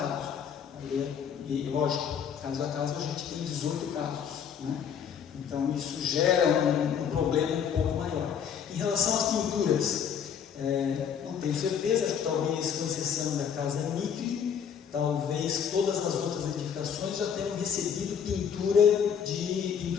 E lógico, caso a caso a gente tem 18 casos, né? Então isso gera um problema um pouco maior. Em relação às pinturas, não tenho certeza, acho que talvez com exceção da Casa Micre, talvez todas as outras edificações já tenham recebido pintura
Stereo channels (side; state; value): right; quieter; 7.8 dB